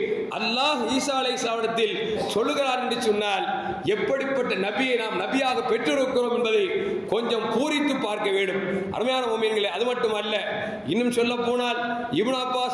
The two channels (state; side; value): identical; both; correlation 1.00